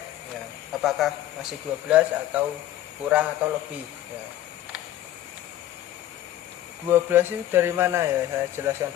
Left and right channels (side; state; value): right; quieter; 13.0 dB